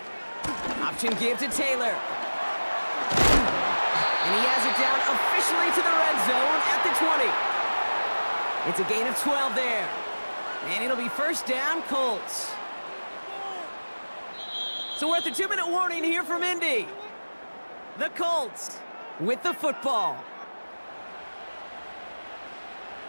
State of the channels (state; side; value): inverted; both; correlation -1.00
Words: Option give to Taylor. And he has it down officially to the red zone at the 20. It's a gain of 12 there. And it'll be 1st down, Colts. So we're at the 2-minute warning here from Indy. The Colts with the football.